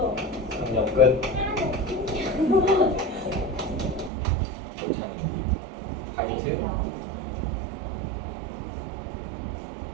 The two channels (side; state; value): left; drops out; at 4.1 s